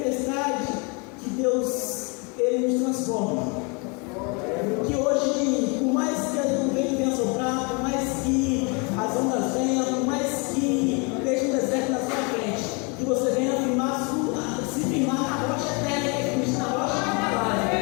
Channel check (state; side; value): quieter; right; 32.1 dB